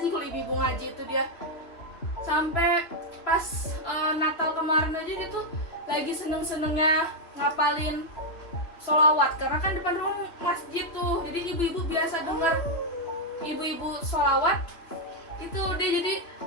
kalau ibu-ibu ngaji itu dia. Sampai pas Natal kemarin aja dia tuh lagi seneng-senengnya ngapalin sholawat, karena kan depan rumah masjid tuh, jadi ibu-ibu biasa denger ibu-ibu sholawat itu dia jadi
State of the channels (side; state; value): right; late; 3.2 ms